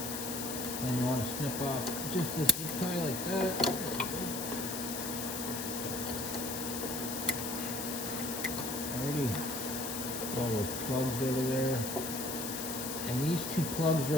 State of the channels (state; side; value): noise; left; hiss, 4 dB below the sound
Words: And you want to snip off just the zip tie like that. Already all those plugs over there. And these two plugs